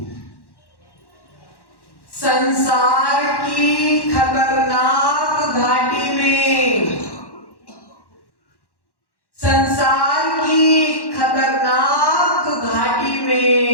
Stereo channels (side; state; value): right; late; 1.1 ms